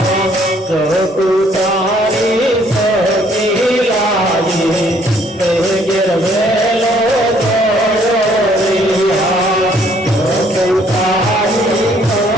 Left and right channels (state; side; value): normal; both; correlation 0.64